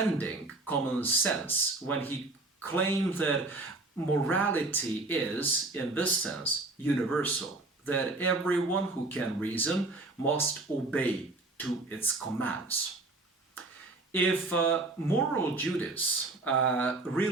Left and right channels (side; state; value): left; quieter; 3.1 dB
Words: common sense when he claimed that morality is, in this sense, universal, that everyone who can reason must obey to its commands. If moral duties